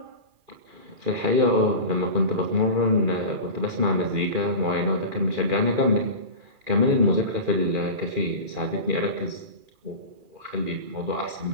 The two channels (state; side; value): late; left; 2.4 ms